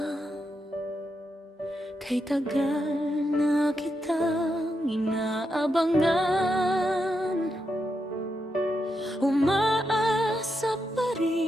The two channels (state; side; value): normal; both; correlation 0.84